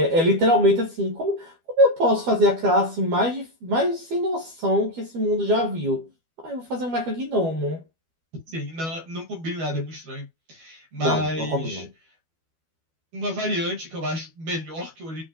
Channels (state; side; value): late; left; 12 ms